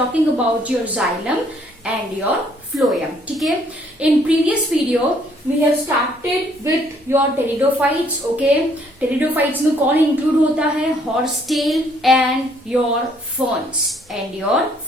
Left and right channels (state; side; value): normal; both; correlation 0.64